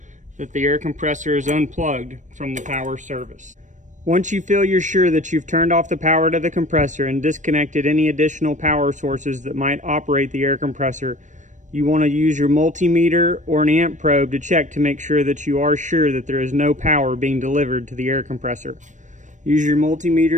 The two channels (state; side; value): late; left; 0.36 ms